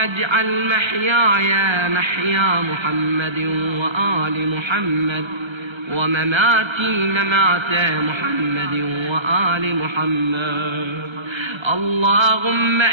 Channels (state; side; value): late; left; 1.3 ms